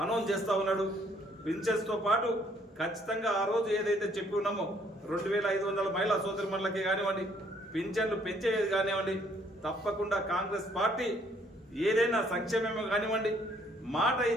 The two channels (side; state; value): both; normal; correlation 0.65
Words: అనౌన్స్ చేస్తా ఉన్నాడు. పింఛన్స్ తో పాటు ఖచ్చితంగా ఆ రోజు ఏదైతే చెప్పి ఉన్నామో 2500 మహిళా సోదరిమణులకి కానివ్వండి, పింఛన్లు పెంచేది కానివ్వండి, తప్పకుండా కాంగ్రెస్ పార్టీ ఏదైనా సంక్షేమం కానివ్వండి, మాట